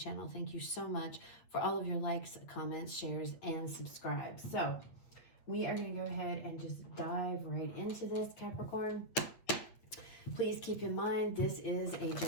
thank you so much for all of your likes, comments, shares, and subscribes. So we are going to go ahead and just dive right into this, Capricorn. Please keep in mind, this is a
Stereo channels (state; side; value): late; right; 8.6 ms